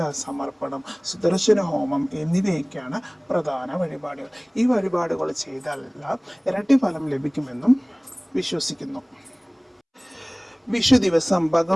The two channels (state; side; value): identical; both; correlation 1.00